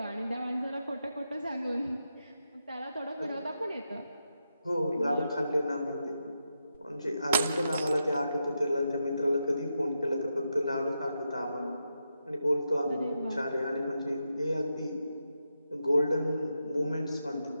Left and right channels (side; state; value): both; inverted; correlation -0.86